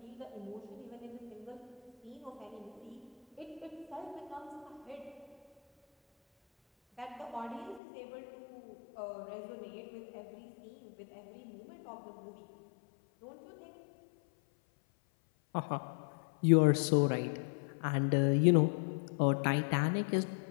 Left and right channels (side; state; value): right; drops out; at 7.8 s